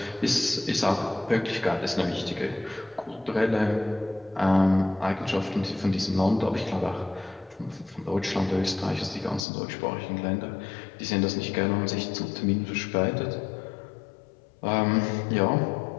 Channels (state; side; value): drops out; right; at 9.5 s